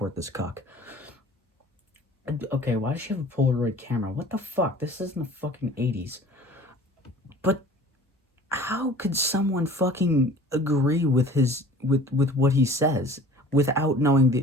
this cuck. Okay, why does she have a Polaroid camera? What the fuck? This isn't the fucking 80s. But how could someone fucking agree with with what he says without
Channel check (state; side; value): normal; both; correlation 0.46